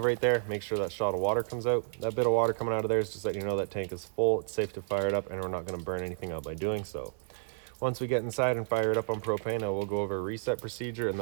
right there. Make sure that shot of water comes out. That bit of water coming out of there is just letting you know that tank is full. It's safe to fire it up and we're not going to burn anything out by doing so. Once we get inside and fire it up on propane, we'll go over a reset procedure, and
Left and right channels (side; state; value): left; silent; 57 dB below the other